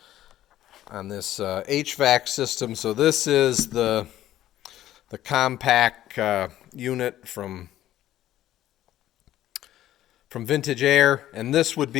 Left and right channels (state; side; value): quieter; right; 13.2 dB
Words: this HVAC system. So this is the compact unit from Vintage Air, and this would